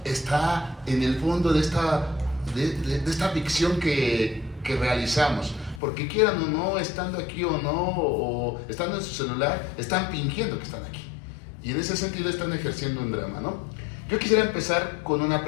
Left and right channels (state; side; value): drops out; right; at 5.8 s